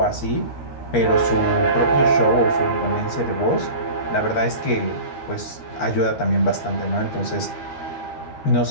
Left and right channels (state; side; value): late; right; 13 ms